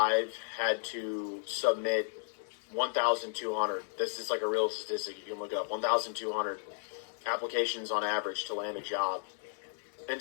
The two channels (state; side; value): silent; right; digital silence